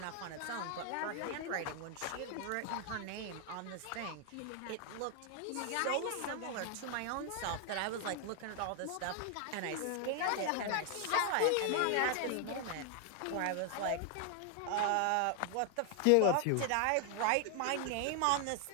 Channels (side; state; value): both; different; correlation 0.00